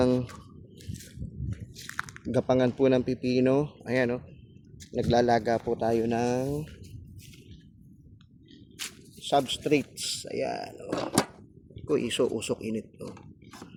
gapangan po ng pipino, ayan oh. Naglalaga po tayo ng substrates. Ayan oh. Ko iso usok init oh.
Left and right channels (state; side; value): identical; both; correlation 1.00